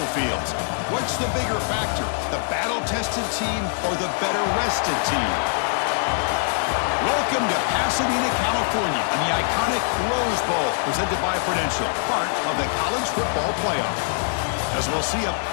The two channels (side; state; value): right; silent; digital silence